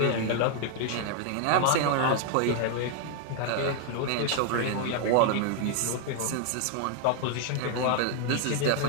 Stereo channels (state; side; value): different; both; correlation 0.00